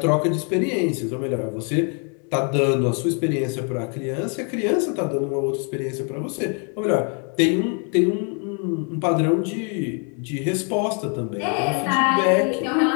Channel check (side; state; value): right; quieter; 39.8 dB